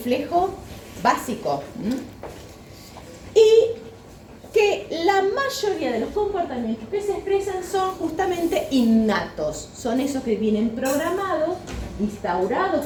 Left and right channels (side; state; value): both; identical; correlation 1.00